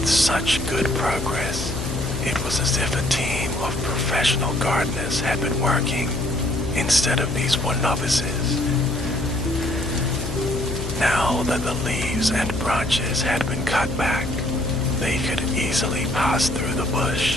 such good progress, it was as if a team of professional gardeners had been working, instead of these one novices. Now that the leaves and branches had been cut back, they could easily pass through the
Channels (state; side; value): noise; left; hum, 6 dB below the sound